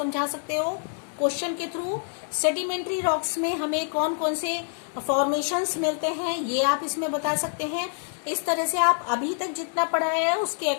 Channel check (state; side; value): silent; right; digital silence